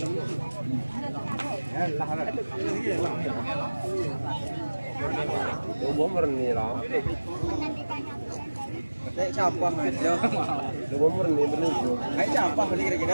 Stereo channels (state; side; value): inverted; both; correlation -1.00